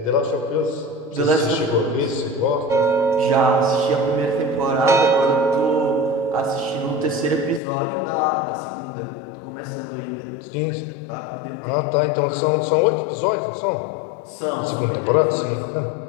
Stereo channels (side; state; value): right; drops out; at 7.6 s